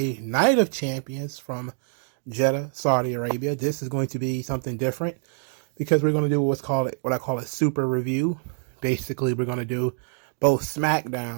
Night of Champions from Jeddah, Saudi Arabia. This is going to be something different because we're going to do what I call a super review. Basically, we're going to do both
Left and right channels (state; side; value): silent; left; 61 dB below the other